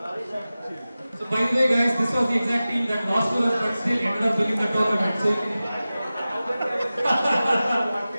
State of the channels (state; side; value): inverted; both; correlation -0.96